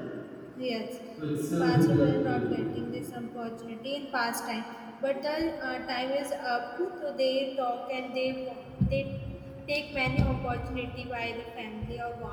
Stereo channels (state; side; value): identical; both; correlation 1.00